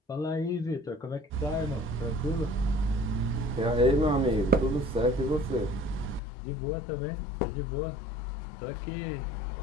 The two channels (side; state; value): right; drops out; at 6.2 s